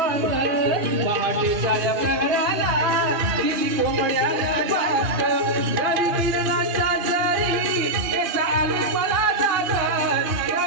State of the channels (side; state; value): left; late; 2.4 ms